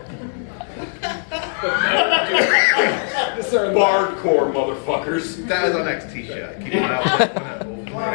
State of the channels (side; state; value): right; silent; 61 dB below the other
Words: Bardcore motherfuckers. That is our next t-shirt. Keep it out. If